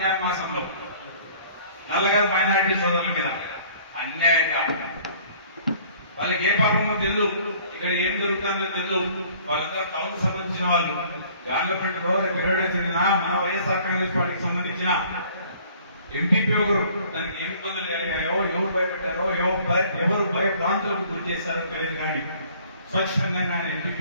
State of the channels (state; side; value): inverted; both; correlation -0.54